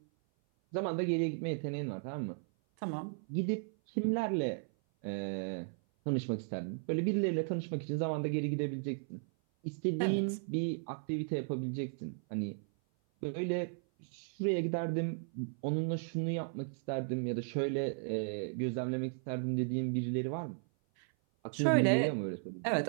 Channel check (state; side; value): silent; left; 54 dB below the other